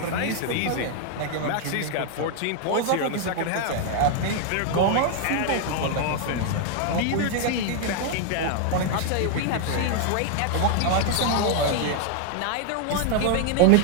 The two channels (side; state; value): both; different; correlation 0.00